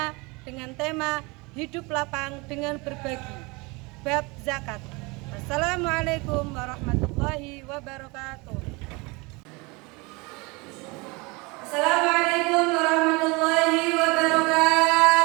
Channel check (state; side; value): quieter; left; 26.5 dB